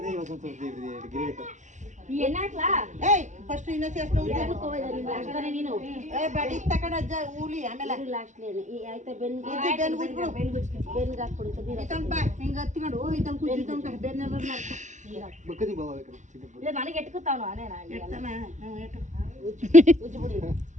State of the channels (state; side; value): late; left; 0.35 ms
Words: ಫಸ್ಟ್ ಇನ್ನ ನೀನು ಬಡಿ ತಕೊಂಡ ಅಜ್ಜ ಊಲಿ ಆಮೇಲೆ ಆಯ್ತಾ ಬೆನ್ಗೆ ಹಾಕ್ಬಿಡು. ಹಿಂಗ ಹತ್ಕೊಂಡು ಇದನ್ ಕುಜ್ಜು ತನಕ ಬೆನ್ನ ನನಗೆ ಎಟ್ಕೊತಾವ